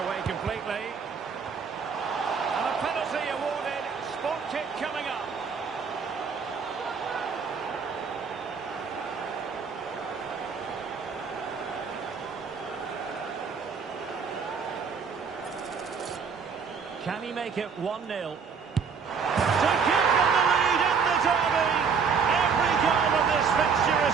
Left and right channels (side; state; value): left; quieter; 5.9 dB